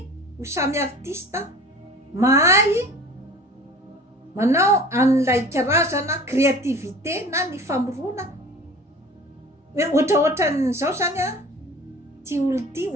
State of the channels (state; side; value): normal; both; correlation 0.42